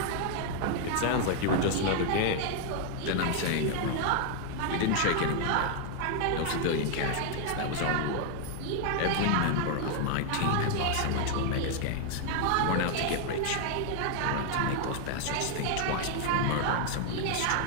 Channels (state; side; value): different; both; correlation 0.00